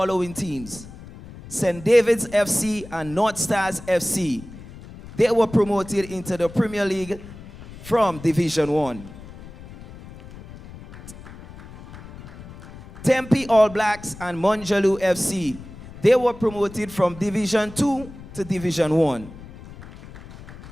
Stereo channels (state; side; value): noise; left; rumble, 16 dB below the sound